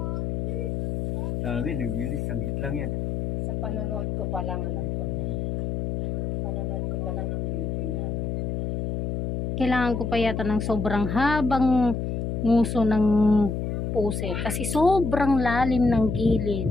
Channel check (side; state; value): left; noise; hum, 2 dB below the sound